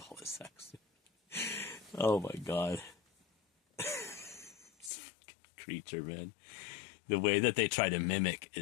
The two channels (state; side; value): drops out; right; at 4.9 s